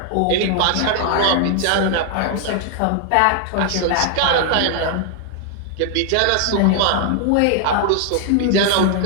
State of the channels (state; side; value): different; both; correlation 0.00